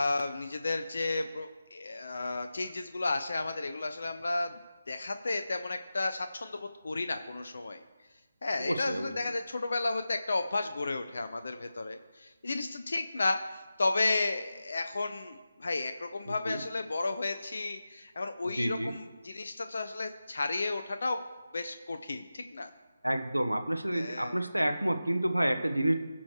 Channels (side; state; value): both; inverted; correlation -0.94